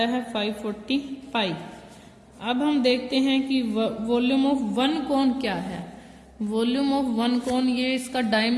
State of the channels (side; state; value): both; identical; correlation 1.00